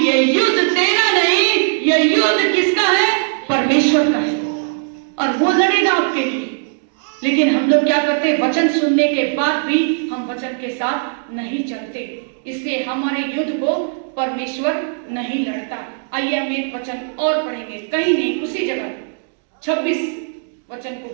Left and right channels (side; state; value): left; silent; digital silence